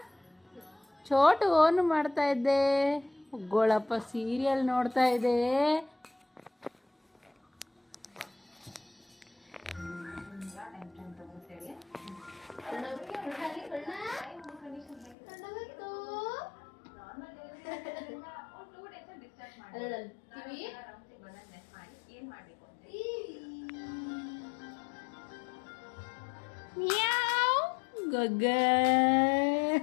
ಚೋಟು ಓನು ಮಾಡ್ತಾ ಇದ್ದೆ. ಗೋಳಪ್ಪ ಸೀರಿಯಲ್ ನೋಡ್ತಾ ಇದೆ. ಮ್ಯಾವ್ ಗೊಗ್ಗ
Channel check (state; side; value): drops out; right; at 15.2 s